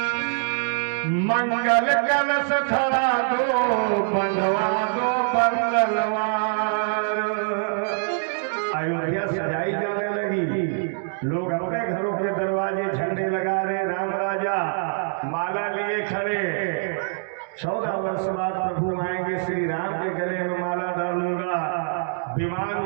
मंगल कलश धरा दो बंधवा दो बंदलवार। अयोध्या सजाई जाने लगी, लोग अपने घरों के दरवाजे झंडे लगा रहे, राम राजा माला लिए खड़े। 14 वर्ष बाद प्रभु आएंगे, श्री राम के गले में माला डालूंगा। विमान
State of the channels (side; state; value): left; silent; digital silence